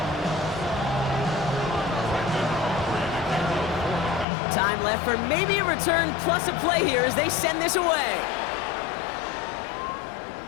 Time left for maybe a return plus a play here as they send this away.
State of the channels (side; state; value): right; drops out; at 4.2 s